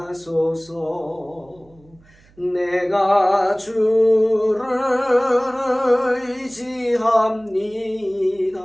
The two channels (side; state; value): right; noise; hum, 29 dB below the sound